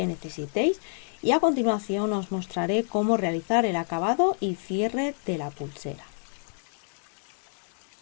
necesitéis y a continuación os mostraré cómo realizar el acabado y cierre de la pulsera.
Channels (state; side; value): silent; right; digital silence